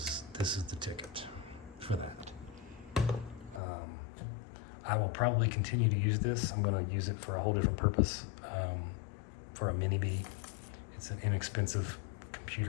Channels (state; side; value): drops out; right; at 3.6 s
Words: the ticket for that. I will probably continue to use this. I'm going to use it for a whole different purpose, for a mini B. It's an inexpensive